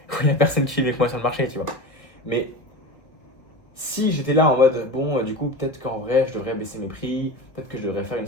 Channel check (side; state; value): right; late; 1.8 ms